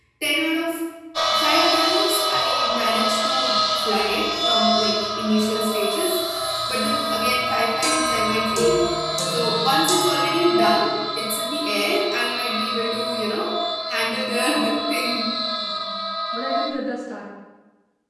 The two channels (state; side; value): identical; both; correlation 1.00